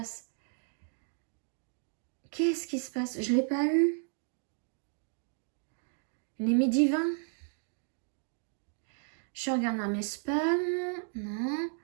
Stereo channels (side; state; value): left; silent; 55 dB below the other